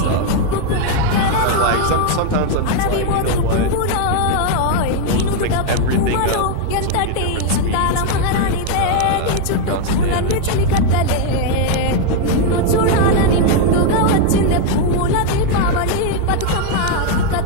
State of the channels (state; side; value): different; both; correlation 0.01